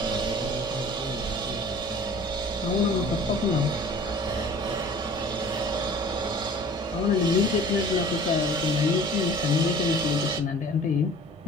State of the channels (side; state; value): both; normal; correlation 0.47